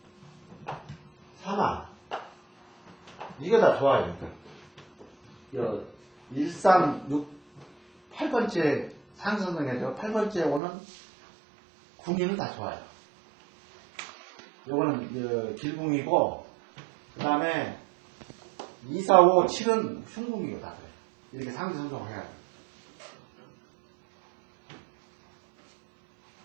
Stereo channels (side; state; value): left; drops out; at 10.6 s